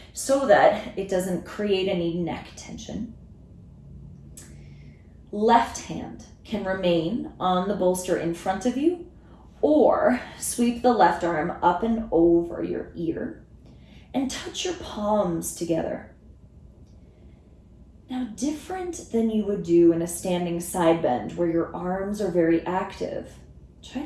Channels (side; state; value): both; identical; correlation 1.00